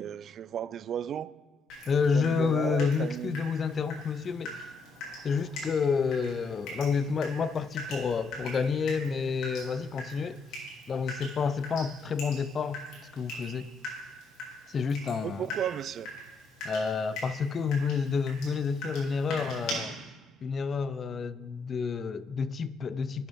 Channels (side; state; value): right; quieter; 4.1 dB